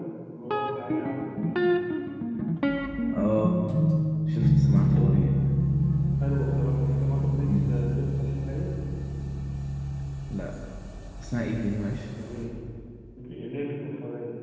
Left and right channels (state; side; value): identical; both; correlation 1.00